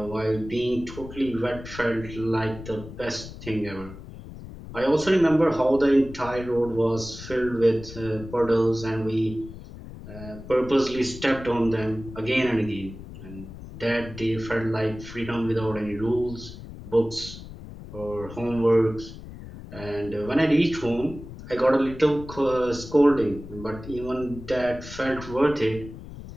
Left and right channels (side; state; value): left; noise; rumble, 13 dB below the sound